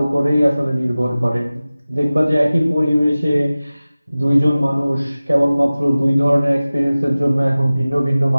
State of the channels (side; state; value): both; inverted; correlation -0.97